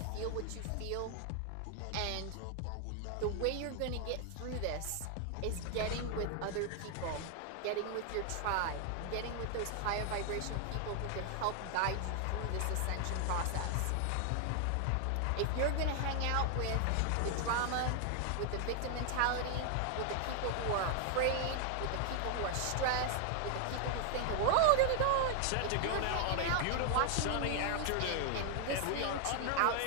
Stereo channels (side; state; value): both; different; correlation 0.00